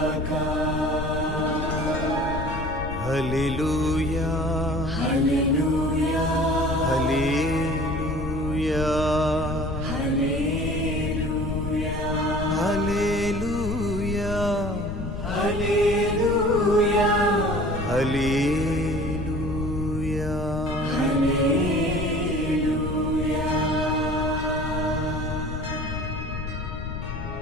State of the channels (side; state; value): left; noise; rumble, 7 dB below the sound